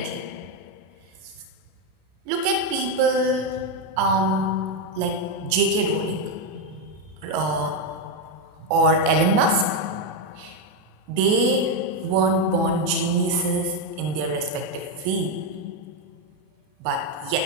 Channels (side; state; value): left; late; 33 ms